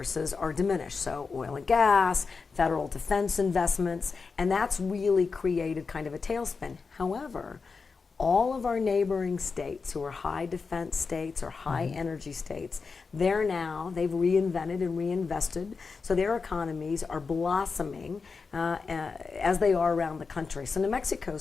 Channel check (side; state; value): right; quieter; 4.8 dB